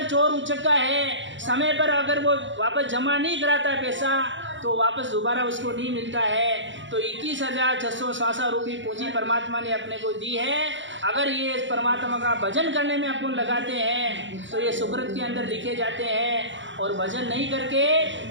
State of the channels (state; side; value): late; left; 0.54 ms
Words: चोर उचक्का है, समय पर अगर वो वापस जमा नहीं कराता पैसा तो वापस दोबारा उसको नहीं मिलता है। तो 21,666 रुपये पूंजी परमात्मा ने अपने को दी है। अगर ये परमात्मा का भजन करने में अपन लगाते हैं तो ये सुकृत के अंदर लिखे जाते हैं। और भजन नहीं करके